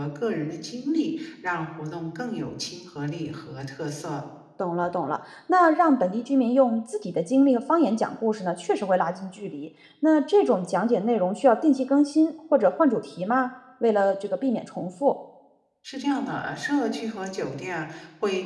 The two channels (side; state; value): both; identical; correlation 1.00